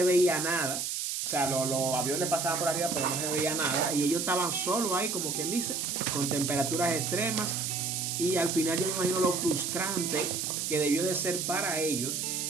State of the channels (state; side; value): noise; right; hiss, 2 dB below the sound